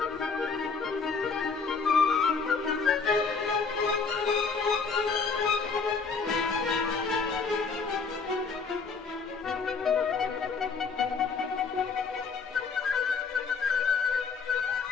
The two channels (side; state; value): right; quieter; 5.0 dB